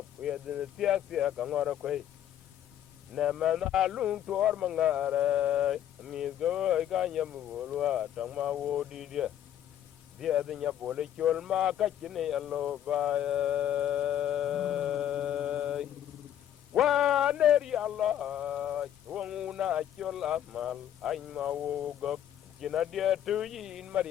yedin tia ka ngora koi na mana lung tor mangare amiga ga nyam bolwa tangma wo di dia nya bole chol ma ka chine allo ba wa neri allah wona chol amal ay ma wo go kina dia tu yin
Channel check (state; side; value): quieter; right; 10.8 dB